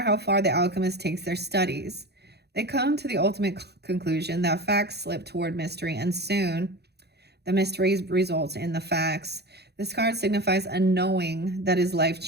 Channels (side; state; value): left; late; 0.48 ms